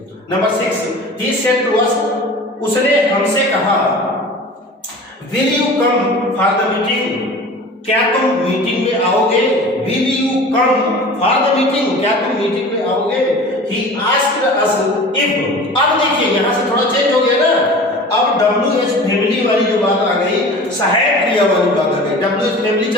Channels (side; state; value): both; normal; correlation 0.39